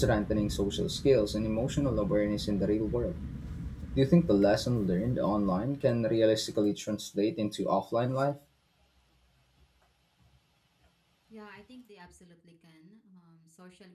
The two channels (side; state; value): both; identical; correlation 1.00